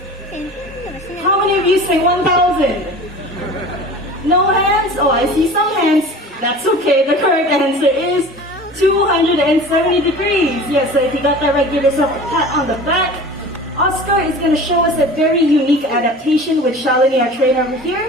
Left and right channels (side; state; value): both; normal; correlation 0.39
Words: How many of you say 1,000? No hands? Oh, I see some hands. That's okay, the correct answer is 270 degrees. Yes, so if you got that right, give yourself a pat on the back. Oscar is going to show us a very unique adaptation with Shalini, our trainer over here.